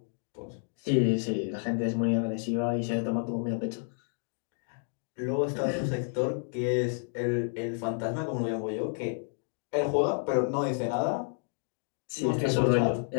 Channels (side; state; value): right; silent; 58 dB below the other